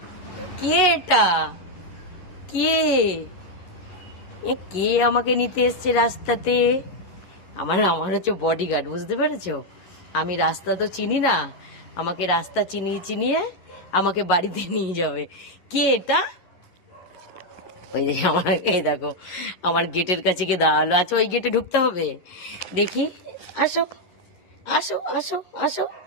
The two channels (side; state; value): right; late; 11 ms